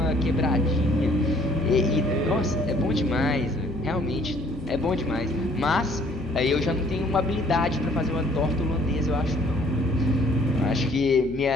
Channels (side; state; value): left; noise; hum, 14 dB below the sound